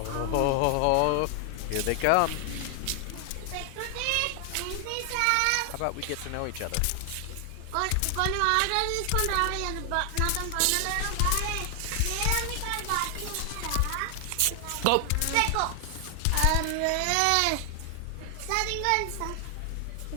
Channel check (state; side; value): different; both; correlation 0.00